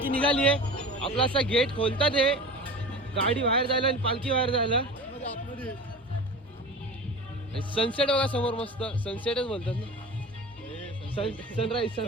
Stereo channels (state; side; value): normal; both; correlation 0.34